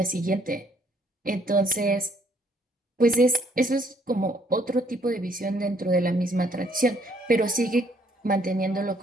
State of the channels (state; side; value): normal; both; correlation 0.65